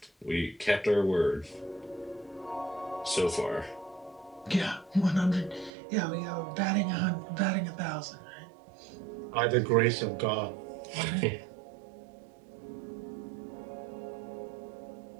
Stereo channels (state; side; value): drops out; left; at 5.7 s